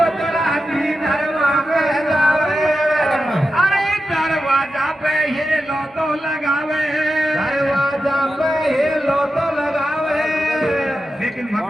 धर्मा के जावे, अरे दरवाजा पे ये लो तो लगावे, दरवाजा पे ये लो तो लगावे। लेकिन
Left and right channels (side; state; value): both; normal; correlation 0.91